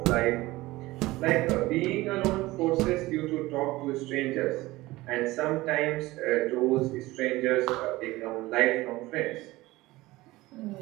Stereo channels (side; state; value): left; quieter; 19.1 dB